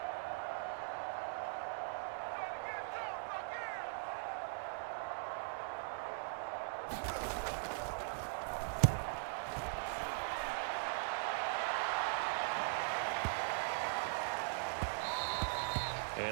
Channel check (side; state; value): left; silent; 51 dB below the other